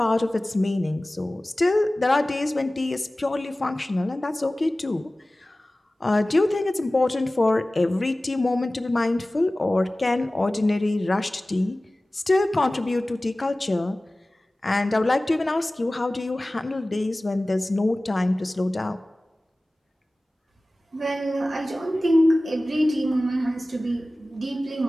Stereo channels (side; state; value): both; normal; correlation 0.98